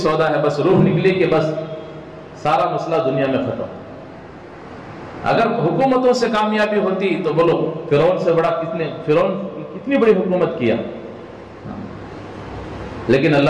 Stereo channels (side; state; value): both; identical; correlation 1.00